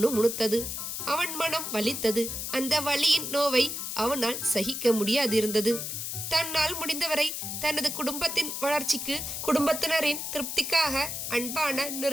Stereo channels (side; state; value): left; noise; hiss, 5 dB below the sound